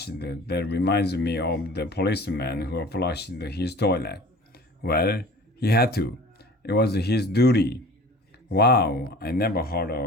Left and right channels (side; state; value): both; normal; correlation 0.43